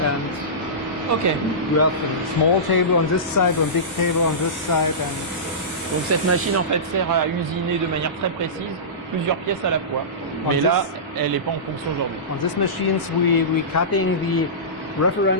And Ok. we have a small table on this side, a big table on this side. And donc cette machine en fait sert à usiner de manière très précise plusieurs pièces à la fois. Mais là, elle n'est pas en fonction aujourd'hui. on this machines we cutting the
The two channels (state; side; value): normal; both; correlation -0.20